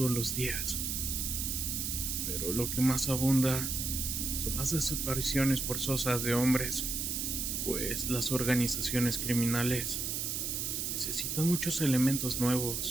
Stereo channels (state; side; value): noise; right; hiss, 1 dB below the sound